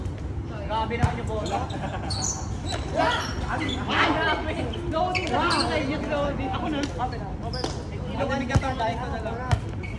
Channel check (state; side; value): identical; both; correlation 1.00